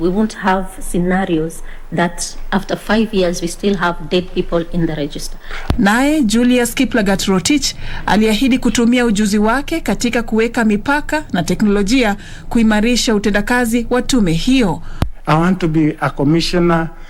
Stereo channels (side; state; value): both; identical; correlation 1.00